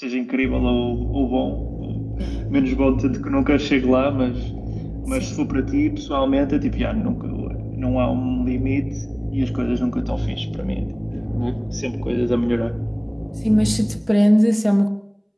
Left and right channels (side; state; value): both; identical; correlation 1.00